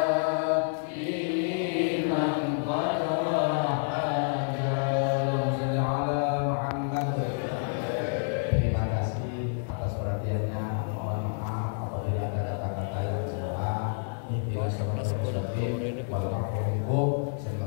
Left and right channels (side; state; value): right; silent; 59 dB below the other